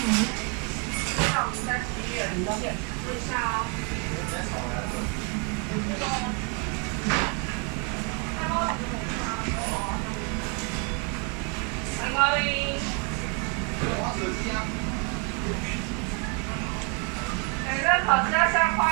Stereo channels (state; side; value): quieter; left; 36.2 dB